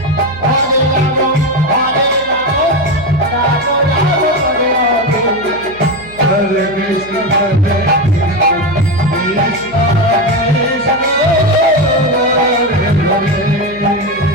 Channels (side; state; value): right; noise; hum, 20 dB below the sound